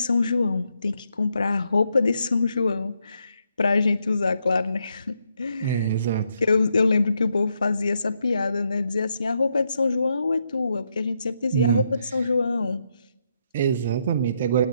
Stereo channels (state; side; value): inverted; both; correlation -0.79